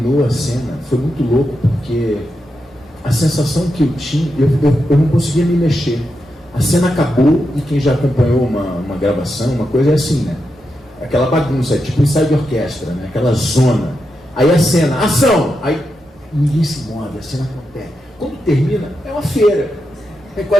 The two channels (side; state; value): both; normal; correlation 0.86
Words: a cena, foi muito louco, porque a sensação que eu tinha, eu não conseguia me mexer. A cena acabou e quem já acompanhou uma gravação, uma coisa é assim, né? Aquela bagunça, é tipo ensaio de orquestra, né? Aquela zona. Aí a cena, ação! Aí ninguém se move, a cena acontece. Quando termina, é uma feira.